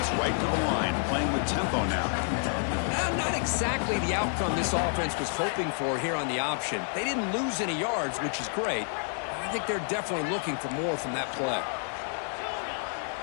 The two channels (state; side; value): silent; right; 56 dB below the other